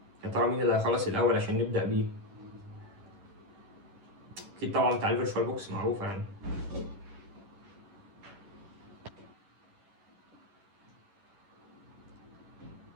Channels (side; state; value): left; late; 10 ms